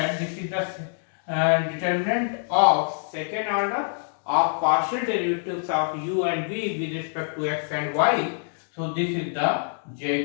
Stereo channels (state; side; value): silent; right; digital silence